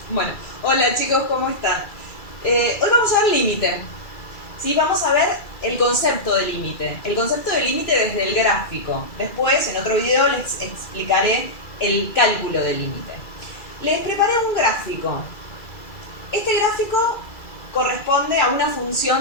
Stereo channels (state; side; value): late; right; 2.3 ms